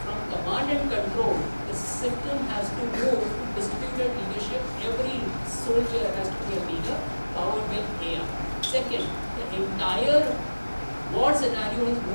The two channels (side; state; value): both; inverted; correlation -1.00